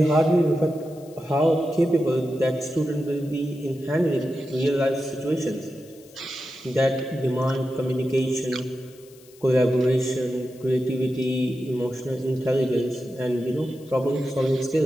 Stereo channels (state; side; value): noise; left; hiss, 26 dB below the sound